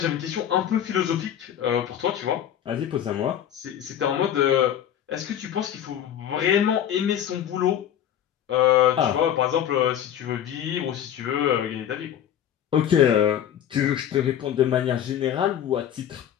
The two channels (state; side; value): quieter; right; 10.1 dB